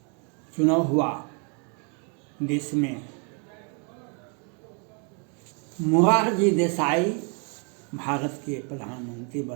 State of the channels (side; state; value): left; quieter; 37.6 dB